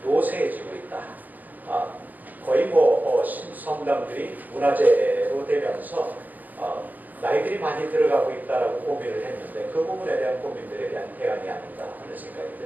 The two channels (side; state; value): left; late; 0.083 ms